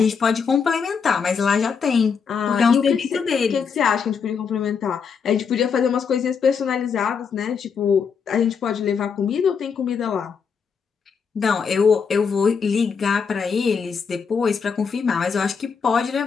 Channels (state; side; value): quieter; right; 6.1 dB